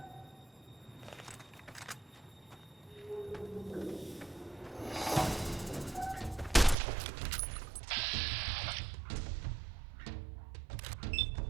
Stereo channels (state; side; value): drops out; left; at 6.8 s